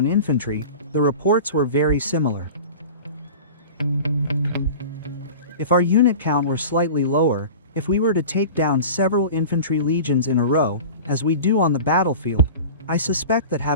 infantry, the reports were very similar. If our unit count were slightly lower, if we were to take down several infantry legions in a row, as we do on the battlefield, I suspect that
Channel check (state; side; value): inverted; both; correlation -0.36